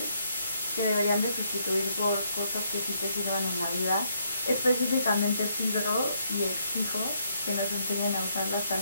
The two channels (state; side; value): inverted; both; correlation -0.73